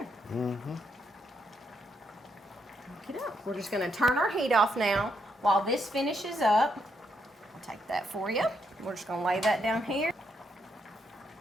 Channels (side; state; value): both; normal; correlation 0.77